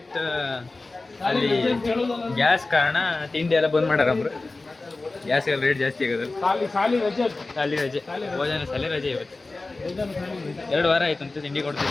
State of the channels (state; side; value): quieter; right; 3.3 dB